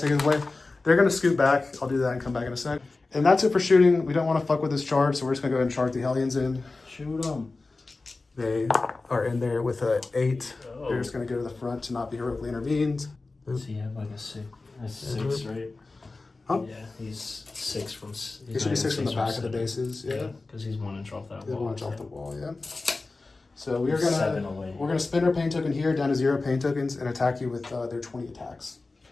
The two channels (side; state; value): right; quieter; 3.5 dB